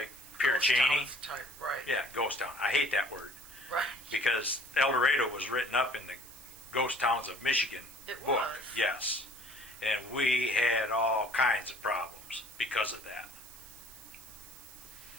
Pierre Ghost Cheney. towns type, right. Yeah, ghost town. I hate that word. Right. Because El Dorado was written up in the Ghost Towns of Michigan It book. was. Yes. And we had all kinds of problems because of that.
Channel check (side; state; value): right; noise; hiss, 17 dB below the sound